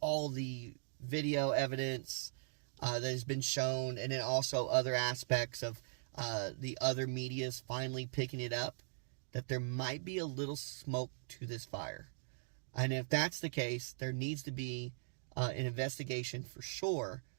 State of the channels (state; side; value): silent; left; digital silence